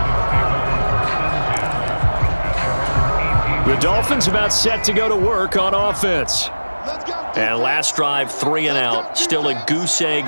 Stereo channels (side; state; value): both; inverted; correlation -1.00